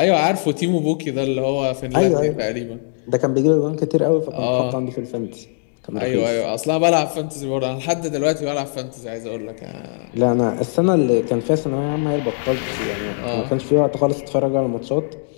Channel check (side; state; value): right; silent; digital silence